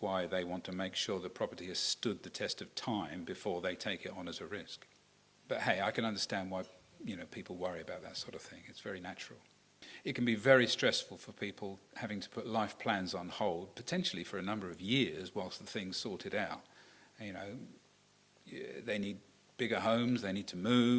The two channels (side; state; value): both; identical; correlation 1.00